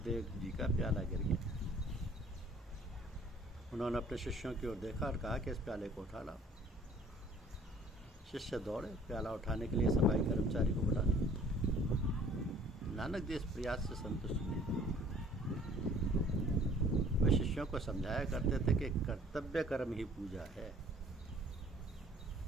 देव जी का प्याला गिर गया। उन्होंने अपने शिष्यों की ओर देखा और कहा कि इस प्याले को उठा लाओ। शिष्य दौड़े प्याला उठाने के लिए सफाई कर्मचारी को बुला लिया। नानक जी इस प्रयास से संतुष्ट नहीं थे। वे शिष्यों को समझाया करते थे कि कर्तव्य कर्म ही पूजा है,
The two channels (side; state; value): both; normal; correlation 0.54